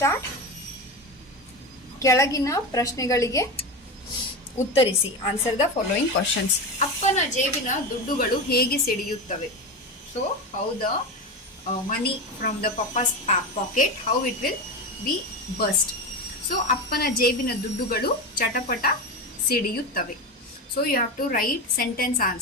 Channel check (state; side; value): normal; both; correlation 0.20